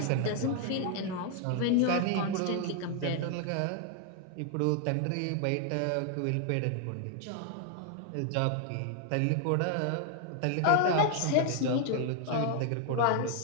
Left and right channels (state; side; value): different; both; correlation 0.00